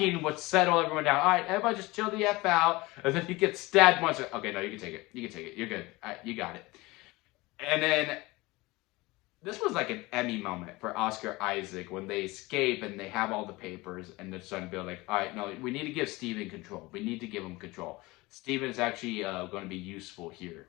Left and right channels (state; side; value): quieter; right; 21.9 dB